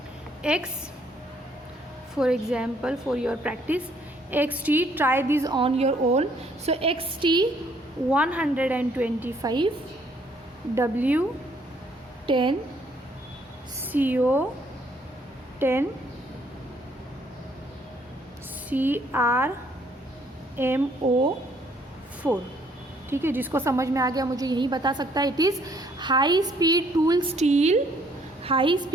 X for example for your practice, XT, try this on your own. So XT 125, W 10, CO 10, CR MO 4. ठीक है, जिसको समझ में आ गया मुझे यही बता सकता है. It is high speed tool steel, high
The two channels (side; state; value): both; normal; correlation 0.65